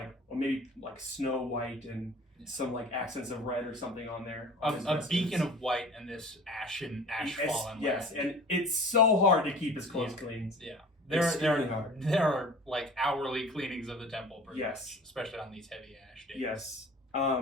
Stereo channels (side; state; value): both; normal; correlation 0.42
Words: or maybe like snow white and some like accents of red or something on there. A beacon of white and this ash fallen. Yes, and it's so hard to keep his clothes clean. Yeah. Hard. There are like hourly cleanings of the temple, pretty yes, much, especially on these heavy ash days. Yes.